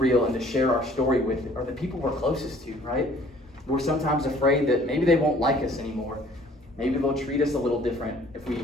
and to share our story with are the people we're closest to, right? We're sometimes afraid that maybe they won't like us anymore. Maybe they'll treat us a little different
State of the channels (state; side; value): normal; both; correlation 0.55